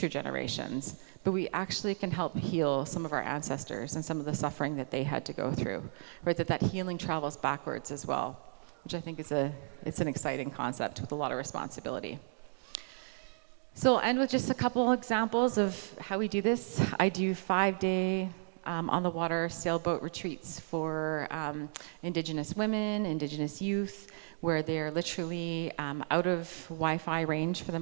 generations, but we actually can help heal some of our ancestors and some of the suffering that they had to go through, right? That healing travels backwards as well, which I think it's an exciting concept with a lot of responsibility. So I'll end with just a couple examples of how we do this. I do 5-day on the water sailboat retreats for Indigenous women, Indigenous youth, where they're literally out of Wi-Fi range for the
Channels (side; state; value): left; silent; 55 dB below the other